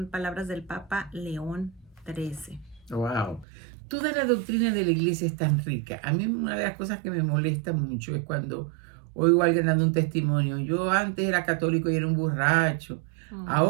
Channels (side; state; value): left; drops out; at 3.5 s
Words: palabras del Papa León XIII. Wow. Toda la doctrina de la iglesia es tan rica. A mí una de las cosas que me molesta mucho es cuando oigo a alguien dando un testimonio. Yo antes era católico y era un borracho.